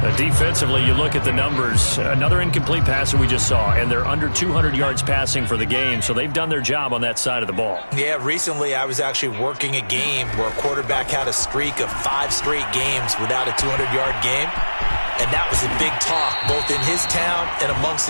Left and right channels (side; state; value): both; inverted; correlation -1.00